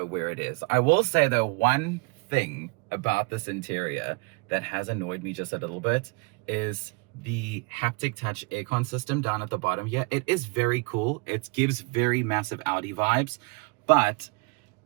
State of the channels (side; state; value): left; quieter; 28.8 dB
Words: where it is. I will say though, one thing about this interior that has annoyed me just a little bit is the haptic touch aircon system down at the bottom here. It is very cool. It gives very massive Audi vibes, but